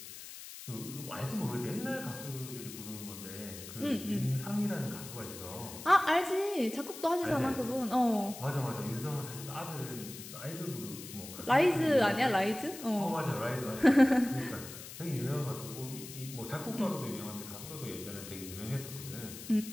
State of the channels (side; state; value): left; noise; hiss, 12 dB below the sound